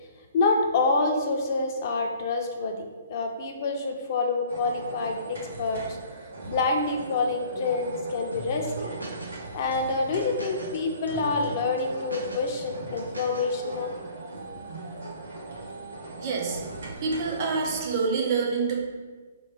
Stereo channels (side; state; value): both; inverted; correlation -0.51